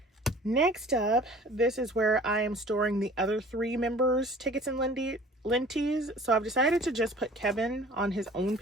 Next up, this is where I am storing the other 3 members' tickets and lenties. So I've decided to just put Kevin on his own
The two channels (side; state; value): both; normal; correlation 0.48